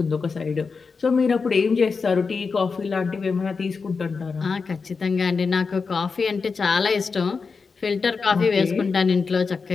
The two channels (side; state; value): right; quieter; 4.9 dB